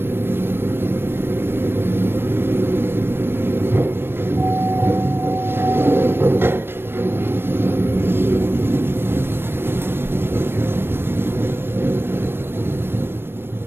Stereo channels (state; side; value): late; left; 0.11 ms